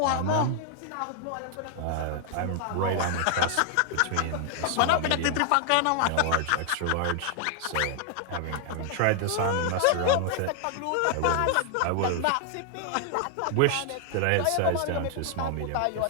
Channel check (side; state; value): both; different; correlation 0.00